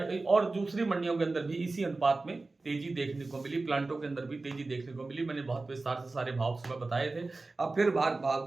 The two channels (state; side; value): quieter; left; 3.4 dB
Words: और दूसरी मंडियों के अंदर भी इसी अनुपात में तेजी देखने को मिली। प्लांटों के अंदर भी तेजी देखने को मिली। मैंने बहुत विस्तार से सारे भाव सुबह बताए थे, अब फिर भाव